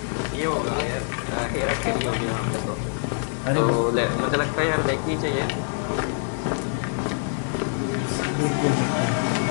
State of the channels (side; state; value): right; silent; digital silence